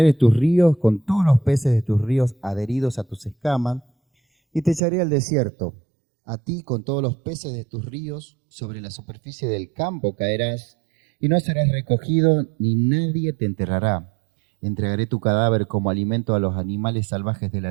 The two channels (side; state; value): left; drops out; at 4.8 s